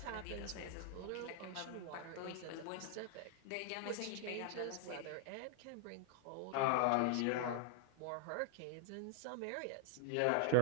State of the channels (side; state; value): both; different; correlation -0.01